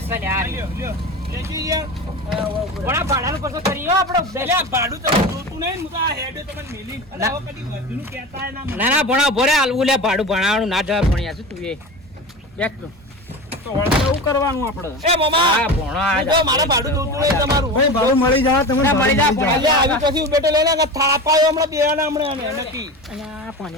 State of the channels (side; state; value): both; normal; correlation 0.29